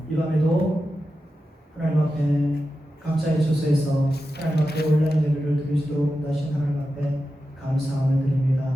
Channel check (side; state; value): both; normal; correlation 0.91